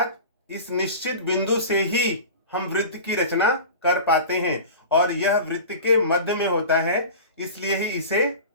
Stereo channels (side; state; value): both; inverted; correlation -0.35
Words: इस निश्चित बिंदु से ही हम वृत्त की रचना कर पाते हैं और यह वृत्त के मध्य में होता है, इसलिए ही इसे